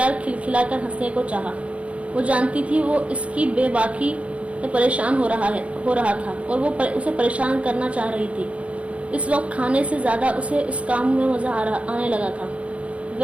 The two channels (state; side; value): late; left; 0.063 ms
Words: کھلکھلا کر ہنسنے کو چاہا. وہ جانتی تھی وہ اس کی بے باکی سے پریشان ہو رہا تھا اور وہ اسے پریشان کرنا چاہ رہی تھی. اس وقت کھانے سے زیادہ اسے اس کام میں مزہ آنے لگا تھا.